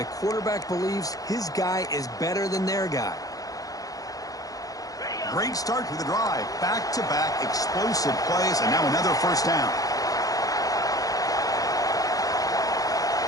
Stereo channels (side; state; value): right; late; 0.17 ms